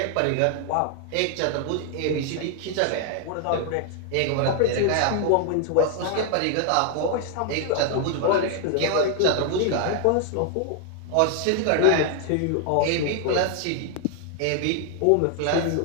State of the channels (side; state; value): both; different; correlation 0.00